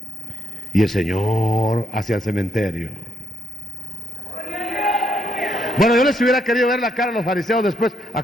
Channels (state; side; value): normal; both; correlation 0.76